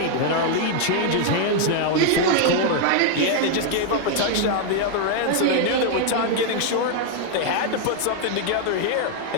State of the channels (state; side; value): different; both; correlation 0.00